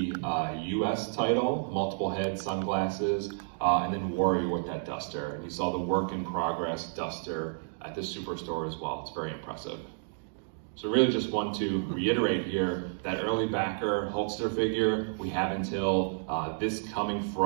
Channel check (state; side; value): silent; left; digital silence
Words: US title, multiple head sunglasses, and then Warrior with that duster. And you saw the work in progress duster at the Superstore as well. It's very impressive. So really just want to reiterate here that early backer Hulkster figure, we have until this coming